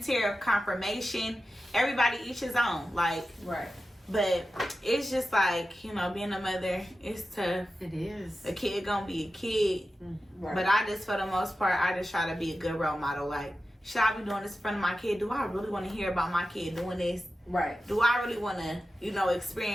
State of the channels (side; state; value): both; normal; correlation 0.93